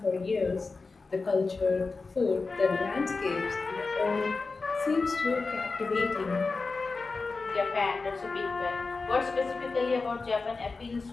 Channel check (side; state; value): right; quieter; 4.0 dB